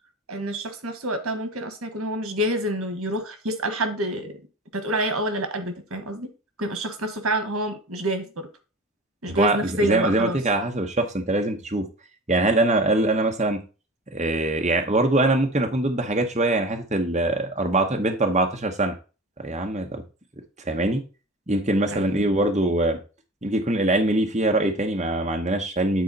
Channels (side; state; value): both; normal; correlation 0.36